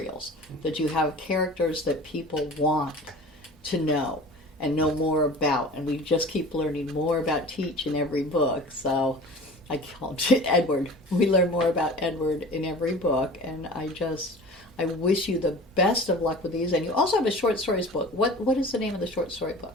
that you have characters that people want to know and know more about, and we just keep learning more about Teach in every book. So I call it Edward. We learn more about Edward in every book, and I wish you the best of luck with these. And you also have a short stories book. What is the name of the short story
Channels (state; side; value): normal; both; correlation 0.40